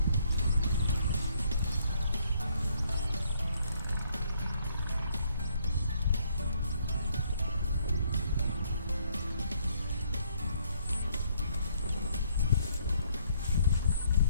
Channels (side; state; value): both; inverted; correlation -0.68